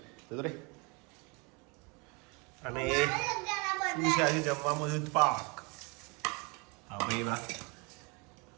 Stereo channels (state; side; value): quieter; left; 30.1 dB